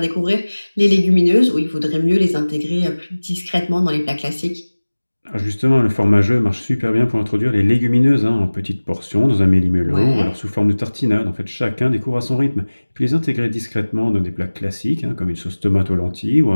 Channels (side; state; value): both; inverted; correlation -1.00